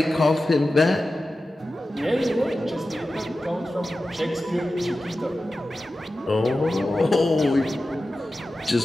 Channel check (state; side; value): normal; both; correlation 0.94